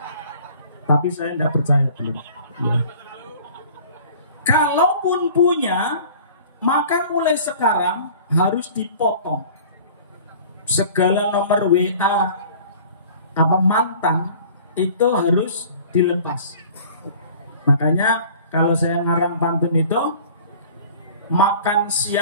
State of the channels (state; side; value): inverted; both; correlation -0.47